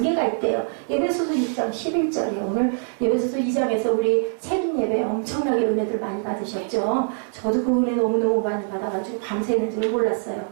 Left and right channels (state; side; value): silent; left; 63 dB below the other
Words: 있대요. 에베소서 6장 11절이에요. 오늘 에베소서 2장에서 우리 세린 예배 엄청나게 은혜들 많이 받으셨죠. 저도 그 은혜 너무너무 많이 받아가지고 밤새는 줄 몰랐어요.